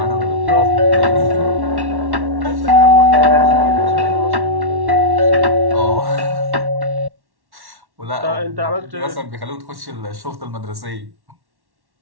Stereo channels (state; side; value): late; left; 1.1 ms